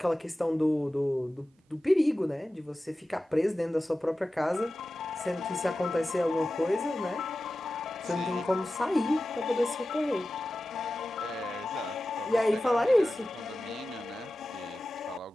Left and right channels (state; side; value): normal; both; correlation 0.94